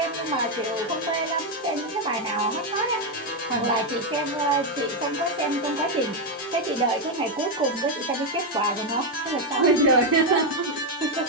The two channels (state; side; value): normal; both; correlation 0.04